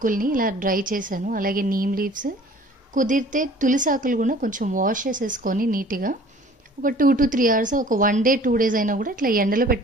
ఇలా డ్రై చేశాను, అలాగే నీమ్ లీవ్స్, కుదిరితే తులసాకులు కూడా కొంచెం వాష్ చేసేసుకొని నీట్గా ఒక 2 to 3 hours, ఒక 1 day 2 days అయినా కూడా ఇట్లా ఎండలో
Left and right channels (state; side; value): normal; both; correlation 0.50